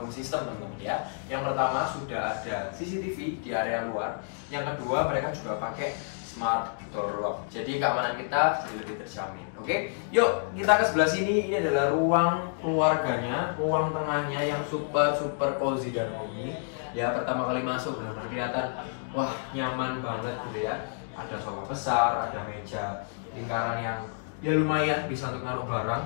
system teman-teman ya. Yang pertama sudah ada CCTV di area luar. Yang kedua mereka juga pakai smart door lock, jadi keamanan kita jadi lebih terjamin. Oke, yuk kita ke sebelah sini. Ini adalah ruang keluarganya, ruang tengahnya yang super cozy dan homey. Ya pertama kali masuk benar-benar kelihatan, wah nyaman banget gitu ya. Ada sofa besar, ada meja lingkaran yang ya lumayan bisa untuk naruh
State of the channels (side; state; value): right; silent; digital silence